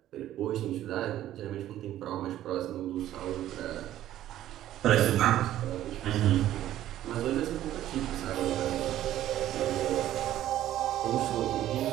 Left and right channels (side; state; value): left; quieter; 12.9 dB